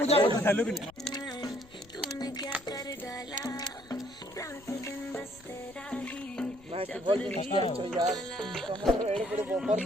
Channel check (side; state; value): left; noise; rumble, 25 dB below the sound